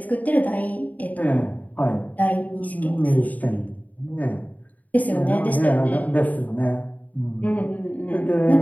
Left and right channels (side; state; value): right; late; 0.075 ms